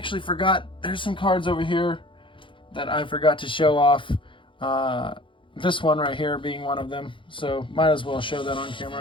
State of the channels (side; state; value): right; late; 0.25 ms